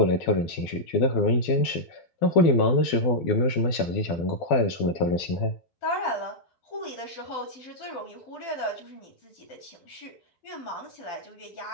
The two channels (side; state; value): right; late; 12 ms